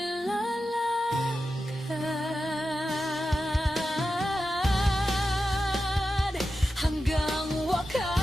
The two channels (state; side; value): normal; both; correlation 0.91